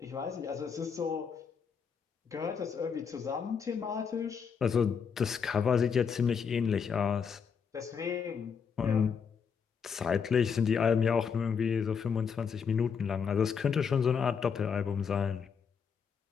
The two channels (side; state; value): right; quieter; 6.5 dB